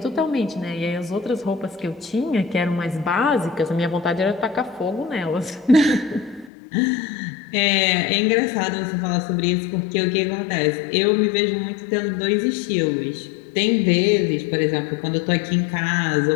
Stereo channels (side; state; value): right; drops out; at 6.5 s